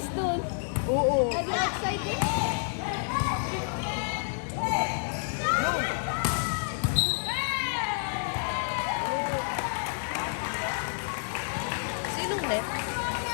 doon. Oo. Are you excited? Sinong net?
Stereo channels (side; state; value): right; silent; digital silence